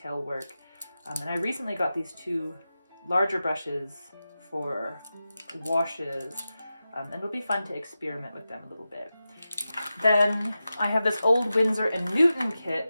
work. And I recently got these 2 larger brushes for washes, and it'll be fun to experiment with them a little bit. Then I have this old Windsor Newton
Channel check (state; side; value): inverted; both; correlation -0.93